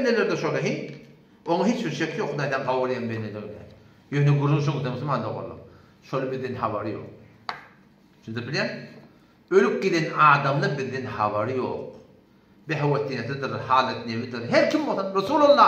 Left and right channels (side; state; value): both; identical; correlation 1.00